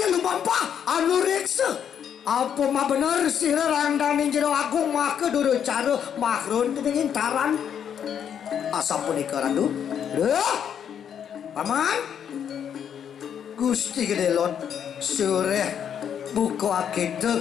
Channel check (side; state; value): right; quieter; 8.5 dB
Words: lumampa anu reksa. Apa mah bener sira randane jero agung make duru cara makrun dening Intaran asa punika randu. Paman Gusti Gedelot sore buka